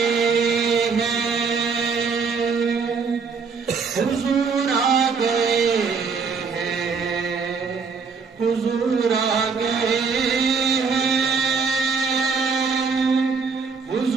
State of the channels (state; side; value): quieter; left; 5.3 dB